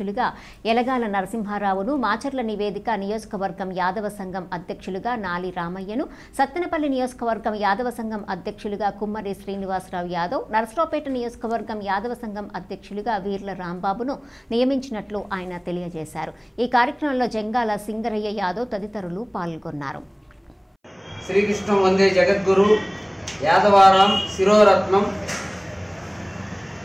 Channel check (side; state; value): both; identical; correlation 1.00